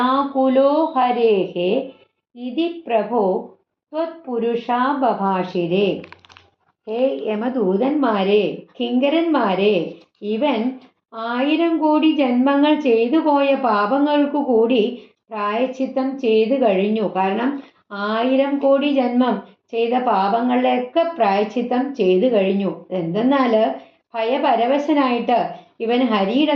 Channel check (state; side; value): identical; both; correlation 1.00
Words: ഹരേഃ ഇതി പ്രഭോ ത്വത്പുരുഷാബഭാഷിരേ. ഹേ യമദൂതന്മാരെ, കിങ്കരന്മാരെ, ഇവൻ 1000 കോടി ജന്മങ്ങൾ ചെയ്തു പോയ പാപങ്ങൾക്കു കൂടി പ്രായശ്ചിത്തം ചെയ്തു കഴിഞ്ഞു. കാരണം 1000 കോടി ജന്മം ചെയ്ത പാപങ്ങളിലൊക്കെ പ്രായശ്ചിത്തം ചെയ്തു കഴിഞ്ഞു. എന്തെന്നാല് ഭയപരവശനായിട്ട് ഇവൻ ഹരിയുടെ